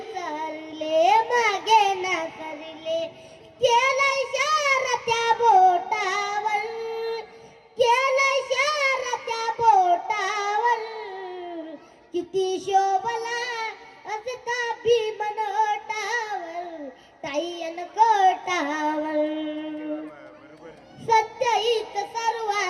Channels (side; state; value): both; identical; correlation 1.00